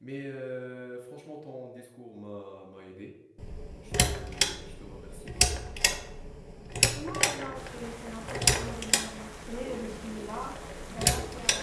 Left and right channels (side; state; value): both; identical; correlation 1.00